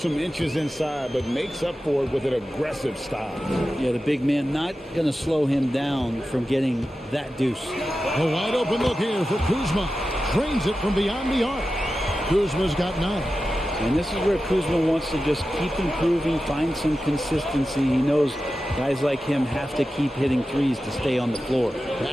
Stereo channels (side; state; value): both; normal; correlation 0.93